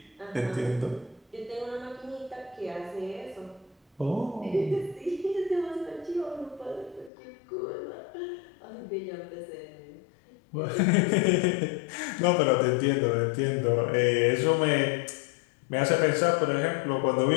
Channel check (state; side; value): drops out; right; at 7.1 s